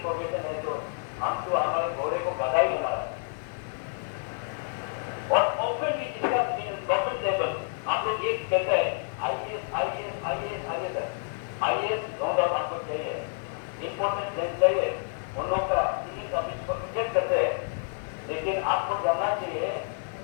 प्रोफेशन है, जो हम तो हमारे घोड़े को बधाई हमारा है। और ओपन भी जिसका गवर्नमेंट लेवल आप लोग ये कहते हैं आईएएस नो डाउट आपको चाहिए, इंपॉर्टेंट लेंस चाहिए, उन लोग का सिविल सर्विस को रिजेक्ट करते हैं। लेकिन आपको जानना चाहिए,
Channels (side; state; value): right; silent; digital silence